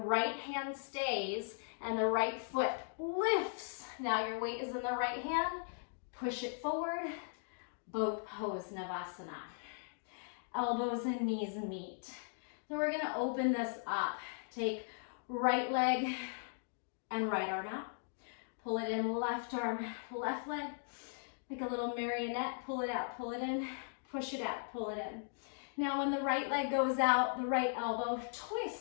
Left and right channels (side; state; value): right; silent; digital silence